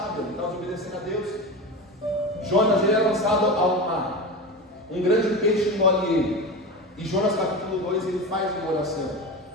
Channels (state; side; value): normal; both; correlation 0.25